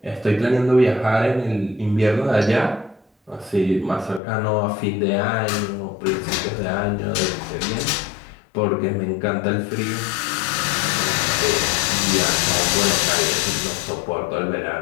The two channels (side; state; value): right; drops out; at 4.2 s